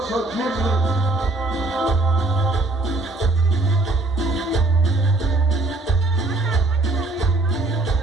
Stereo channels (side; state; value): left; quieter; 3.0 dB